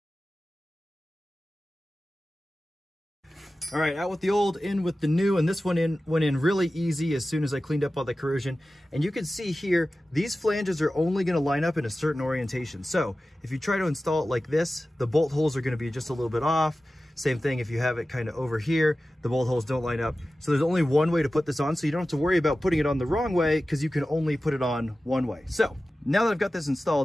All right, out with the old, in with the new, and this one went in really easy as soon as I cleaned up all the corrosion. And you can see here, these flanges are only gonna line up in a certain orientation. So if you try to install it like this, the bolt holes are gonna be just a little bit off. Same thing if you have it kind of over here, the bolt holes don't line up. So there's only one way to put this on, so you don't have to worry about putting it on the wrong way because you can only put it on one way. So now that I've got this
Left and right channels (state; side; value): normal; both; correlation 0.95